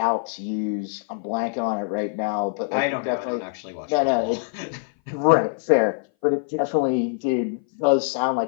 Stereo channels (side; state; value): right; silent; 59 dB below the other